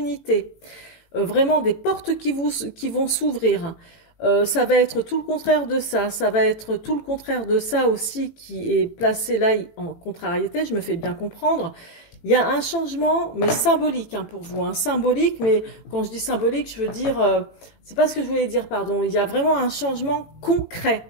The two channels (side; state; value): right; late; 18 ms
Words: vraiment des portes qui vont s'ouvrir. Ça va être tout le contraire de ça, ça va être tout le contraire de ça aussi qui est placé là en contrariété, je me fais bien comprendre. Il y a un changement, mais symbolique, hein, pour vous, hein, symbolique, mais quand je dis symbolique, je veux dire, c'est pas ce que je voulais dire, pardon, il y a vraiment un changement concret.